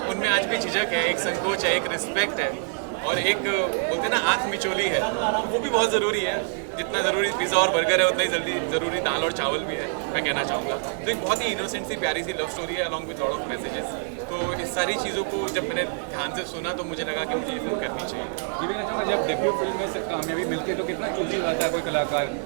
उनमें आज भी झिझक है, एक संकोच है, एक रिस्पेक्ट है, और एक बोलते हैं ना आँख मिचोली है, वो भी बहुत ज़रूरी है। जितना ज़रूरी पिज़्ज़ा और बर्गर है उतना ही ज़रूरी दाल और चावल भी है, मैं कहना चाहूँगा। तो एक बहुत ही इनोसेंट सी प्यारी सी लव स्टोरी है along with lot of messages. तो इस सारी चीज़ों को जब मैंने ध्यान से सुना तो मुझे लगा कि मुझे ये फिल्म करनी चाहिए। ये भी कहना चाहूँगा, जब डेब्यू फिल्म में से कामयाबी मिलती है तो कितना चूजी रहता है कोई कलाकार,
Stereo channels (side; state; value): left; silent; digital silence